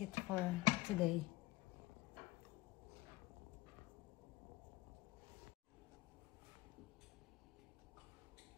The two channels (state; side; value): quieter; right; 19.0 dB